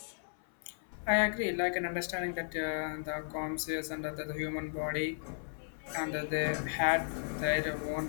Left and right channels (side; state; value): right; silent; 54 dB below the other